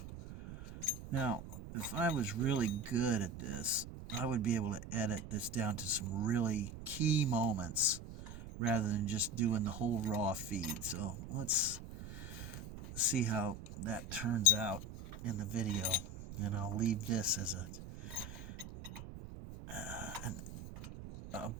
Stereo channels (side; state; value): right; noise; rumble, 11 dB below the sound